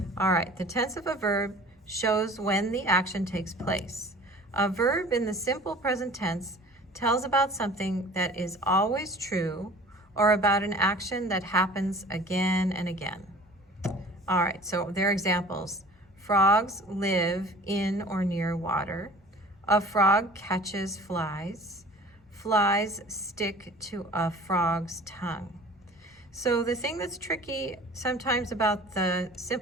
All right, the tense of a verb shows when the action takes place. A verb in the simple present tense tells about something that is always true or about an action that happens again and again. All right, so there are examples. Frogs live in or near water. A frog catches flies. Flies stick to a frog's tongue. So the thing that's tricky sometimes about the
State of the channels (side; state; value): both; normal; correlation 0.46